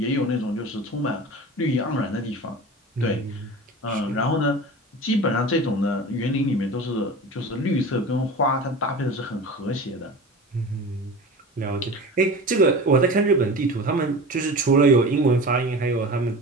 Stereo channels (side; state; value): both; normal; correlation 0.33